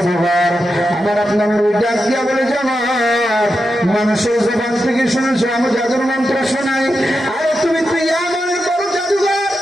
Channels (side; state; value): both; normal; correlation 0.88